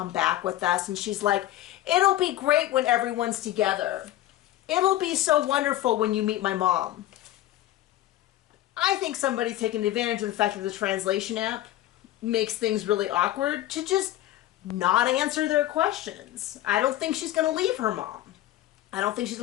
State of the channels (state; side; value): quieter; right; 14.3 dB